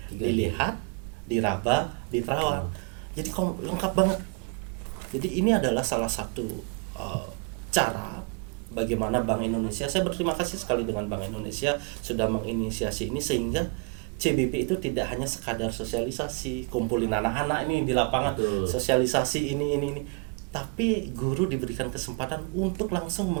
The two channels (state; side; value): quieter; left; 32.7 dB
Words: 3D. Dilihat, diraba, diterawang. Jadi lengkap banget. Jadi ini adalah salah satu cara bagaimana Bank Indonesia, saya berterima kasih sekali dengan Bank Indonesia sudah menginisiasi ini sehingga CBP itu tidak hanya sekadar sosialisasi, kumpulin anak-anak ini di lapangan, Betul. sosialisasi ini, tapi guru diberikan kesempatan untuk langsung